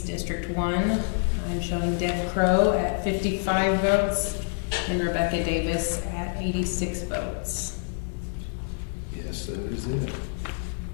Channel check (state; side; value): silent; right; 60 dB below the other